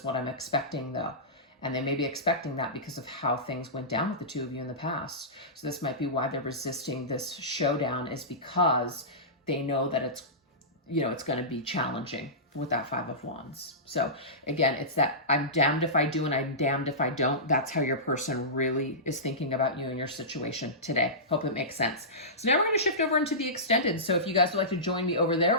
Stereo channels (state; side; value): normal; both; correlation -0.19